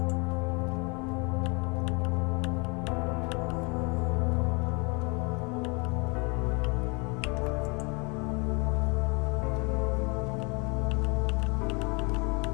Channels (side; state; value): right; quieter; 30.9 dB